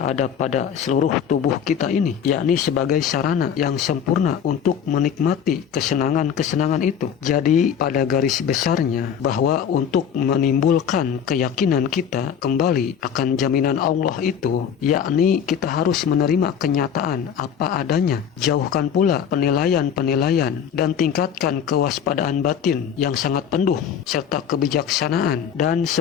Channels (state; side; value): quieter; right; 8.1 dB